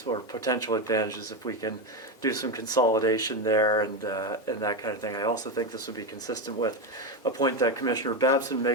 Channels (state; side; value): normal; both; correlation 0.13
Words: or potential advantages if we can do some consolidation there and that kind of thing. I also think this would be consistent with a point that Commissioner Babson